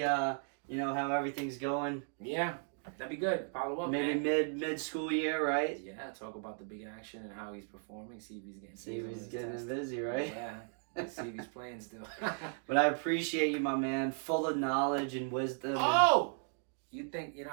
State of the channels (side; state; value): left; silent; 54 dB below the other